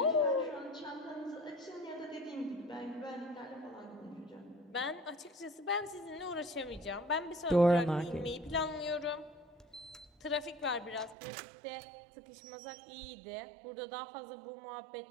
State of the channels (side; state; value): left; drops out; at 11.2 s